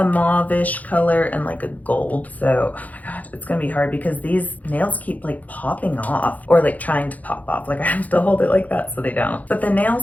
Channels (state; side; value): late; right; 0.077 ms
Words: mauve-ish color and like a gold. So, oh my god, it's gonna be hard because these nails keep like popping off or like trying to pop off. Like I have to hold it like that so they don't. But the